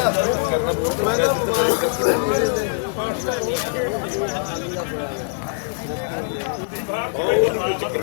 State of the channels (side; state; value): right; silent; digital silence